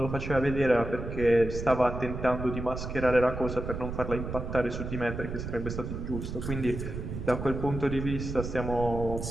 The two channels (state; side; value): noise; right; rumble, 6 dB below the sound